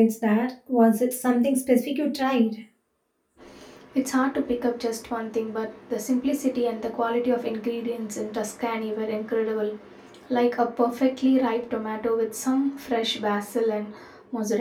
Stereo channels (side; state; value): both; identical; correlation 1.00